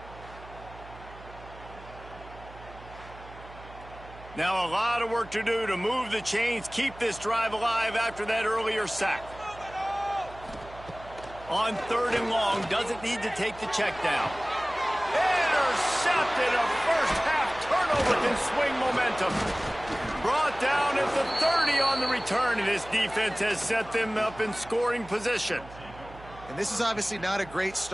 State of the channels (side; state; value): right; noise; hum, 18 dB below the sound